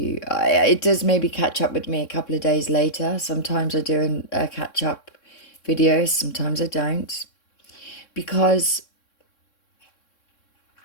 It does maybe catch up with me a couple of days later. Sometimes I do a catch up video, sometimes I don't. Because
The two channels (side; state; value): right; late; 3.6 ms